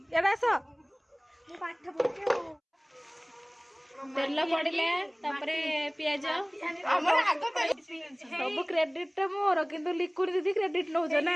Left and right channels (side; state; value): both; identical; correlation 1.00